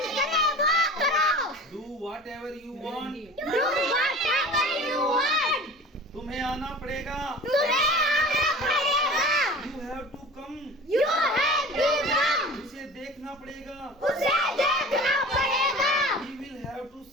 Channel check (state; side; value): normal; both; correlation 0.39